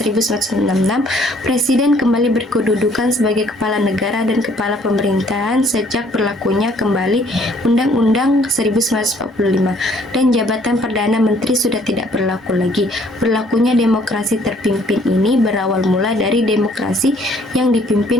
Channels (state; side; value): normal; both; correlation 0.61